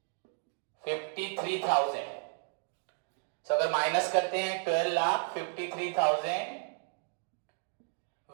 अगर माइनस करते हैं 12,53,000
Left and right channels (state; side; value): silent; left; digital silence